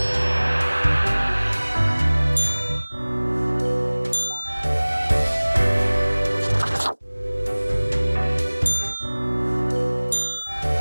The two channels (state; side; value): inverted; both; correlation -1.00